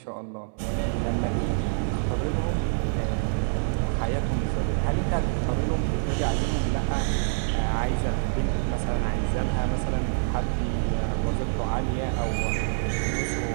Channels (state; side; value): silent; left; digital silence